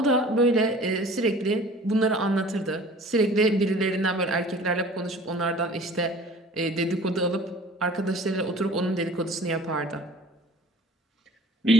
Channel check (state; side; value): normal; both; correlation 0.46